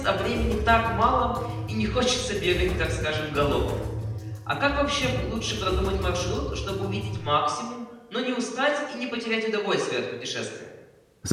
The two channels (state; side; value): identical; both; correlation 1.00